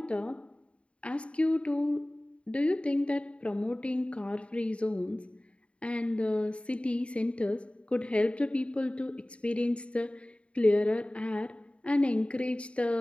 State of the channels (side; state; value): right; late; 0.060 ms